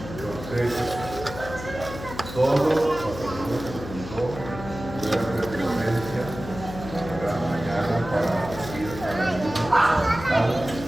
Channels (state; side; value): noise; left; hum, 11 dB below the sound